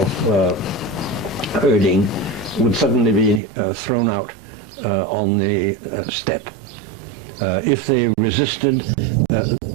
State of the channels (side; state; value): left; drops out; at 3.4 s